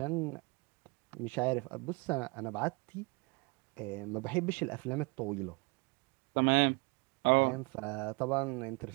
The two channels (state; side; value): quieter; left; 28.7 dB